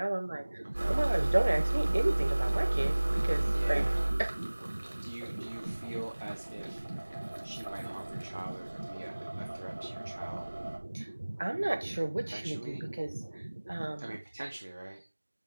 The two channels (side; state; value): both; inverted; correlation -1.00